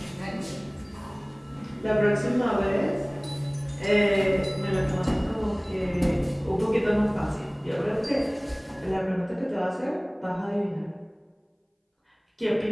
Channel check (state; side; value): identical; both; correlation 1.00